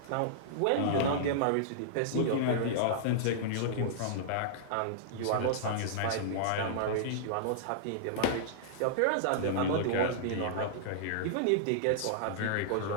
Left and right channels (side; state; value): both; different; correlation -0.02